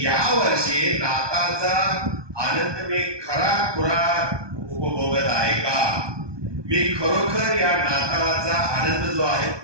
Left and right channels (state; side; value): late; left; 1.2 ms